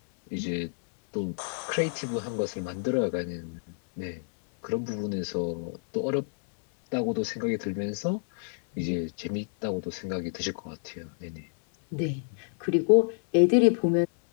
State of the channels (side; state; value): right; silent; 59 dB below the other